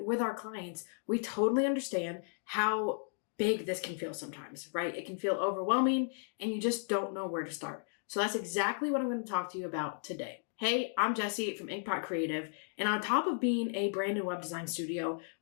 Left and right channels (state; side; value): silent; right; 55 dB below the other